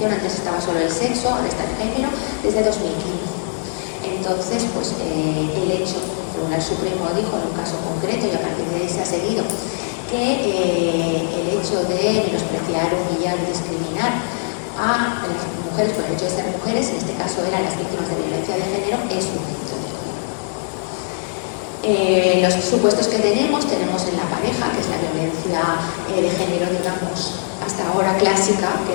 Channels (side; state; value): right; silent; 65 dB below the other